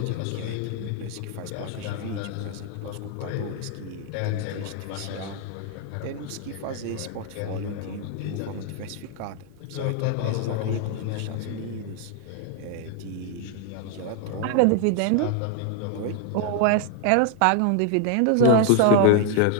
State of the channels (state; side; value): different; both; correlation 0.00